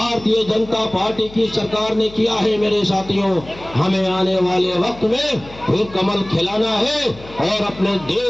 जनता पार्टी की सरकार ने किया है मेरे साथियों। हमें आने वाले वक्त में फिर कमल खिलाना है और अपने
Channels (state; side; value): noise; left; hum, 19 dB below the sound